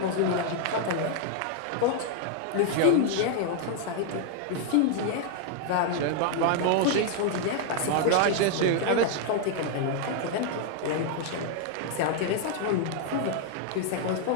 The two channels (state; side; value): different; both; correlation 0.00